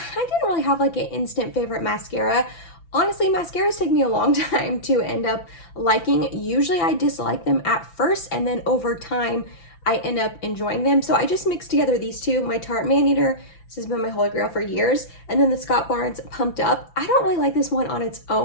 didn't really have like an instant favorite mascara. Honestly, mascaras take me a long time to end up liking. Usually I dislike them at first, and then over time, I end up enjoying them. So I just mixed together these two, my Tarte Maneater. This has been my holy grail for years. And then the Scott Barnes Pumped Up. I don't really like this one on its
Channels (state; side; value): late; right; 5.9 ms